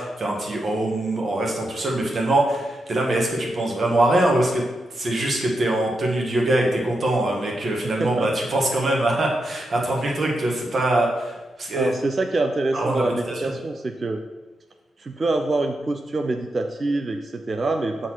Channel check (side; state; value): both; normal; correlation 0.86